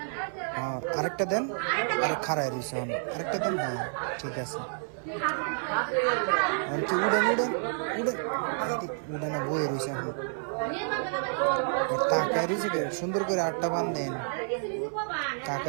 হ্যাঁ, আরেকটা দেন। আরে খারাই রয়েছে, আরেকটা দেন। হ্যাঁ ঠিক আছে। কি উড়েন উড়েন উড়েন, উড়ে না বয়ে রয়েছে এখন। তাকায় রয়েছে কে সুন্দর করে, আটটা বান দেন।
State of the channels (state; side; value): silent; left; 58 dB below the other